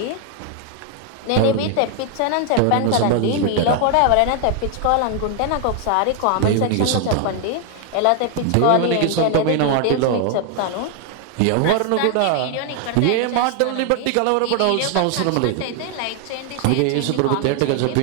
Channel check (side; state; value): both; different; correlation 0.00